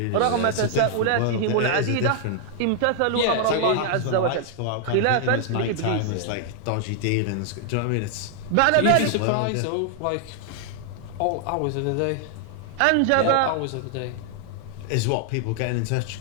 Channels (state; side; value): different; both; correlation 0.00